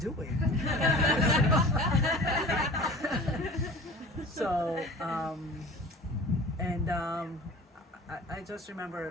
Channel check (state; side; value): normal; both; correlation 0.41